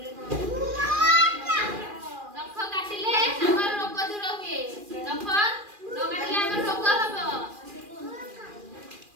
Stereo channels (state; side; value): late; left; 2.4 ms